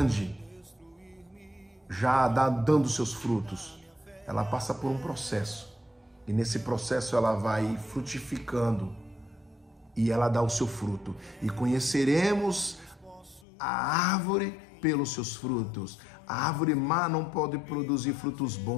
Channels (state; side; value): drops out; right; at 13.5 s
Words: já dando seus frutos. Ela passa por um processo. E nesse processo ela vai frutificando e ela dá o seu fruto. E conheceremos a árvore pelos seus frutos. A árvore má não pode produzir frutos